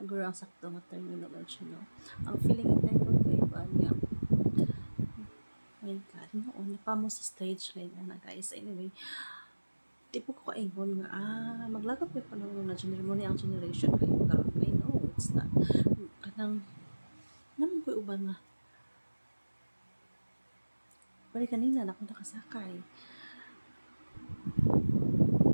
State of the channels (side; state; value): both; inverted; correlation -1.00